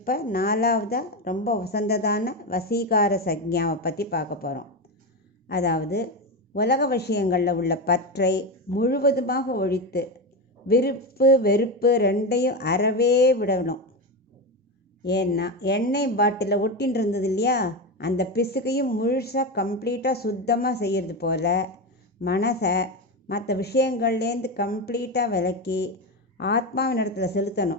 4வதாக ரொம்ப வசந்ததான வசீகார சக்ஞாவை பற்றி பார்க்க போகிறோம். அதாவது உலக விஷயங்களில் உள்ள பற்றை முழுவதுமாக ஒழித்து விருப்பு வெறுப்பு ரெண்டையும் அறவே விடணும். ஏன்னா எண்ணெய் பாட்டிலில் ஒட்டின்னு இருந்தது இல்லையா, அந்த பிசுக்கையும் முழுசாக கம்ப்ளீட்டாக சுத்தமாக செய்கிறது போல் மனசை மற்ற விஷயங்கள்லேருந்து கம்ப்ளீட்டாக விலக்கி ஆத்மாவின் இடத்துல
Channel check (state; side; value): normal; both; correlation 0.16